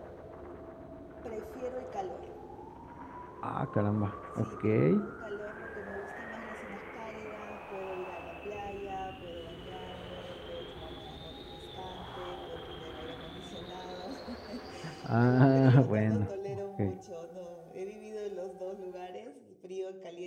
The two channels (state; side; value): identical; both; correlation 1.00